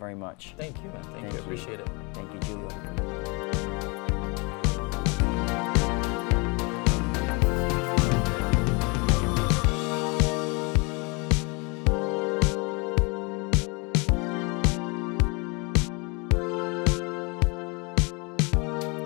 much. Thank you, man. Thank you. I appreciate it. Thank you, Giulio.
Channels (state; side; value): quieter; right; 30.0 dB